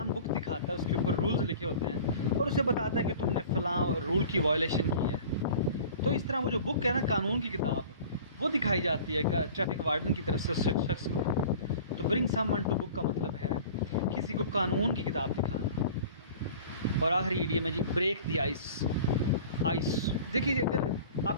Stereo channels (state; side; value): inverted; both; correlation -0.43